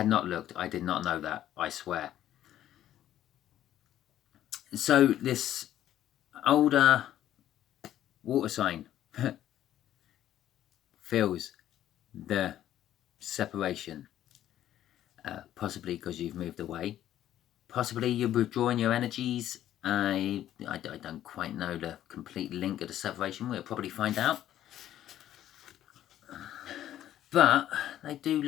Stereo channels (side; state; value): right; quieter; 12.1 dB